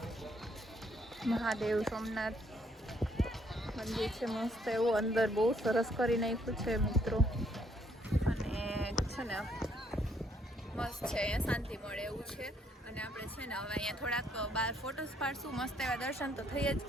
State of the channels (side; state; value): both; normal; correlation 0.68